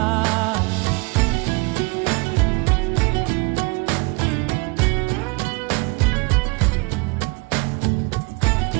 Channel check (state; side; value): quieter; left; 27.9 dB